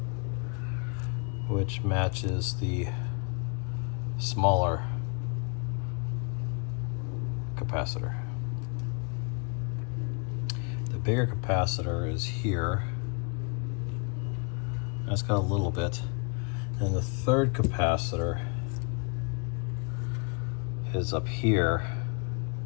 which matches the smaller capacitor. The bigger capacitor is here. That's got a little bit. And the third capacitor is up here.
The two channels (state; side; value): quieter; right; 34.8 dB